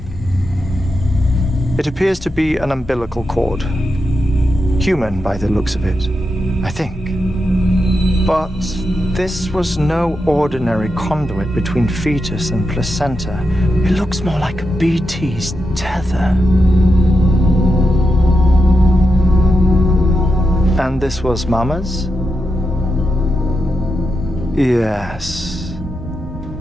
It appears to be an umbilical cord. Human by the looks of it, I think. But this was no ordinary conduit between fetus and placenta. It looks more like a BT's tether. And this was Mama's? Yes.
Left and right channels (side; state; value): both; normal; correlation 0.87